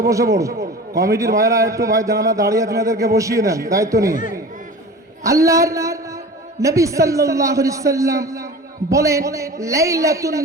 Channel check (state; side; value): normal; both; correlation 0.36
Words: বসে পড়ুন। কমিটির ভাইরা একটু ভাই জানারা দাঁড়িয়ে আছেন এদেরকে বসিয়ে নেন দায়িত্ব নিয়ে। আল্লাহর নবী সাল্লাল্লাহু আলাইহি সাল্লাম বলেন, লাইলাতুন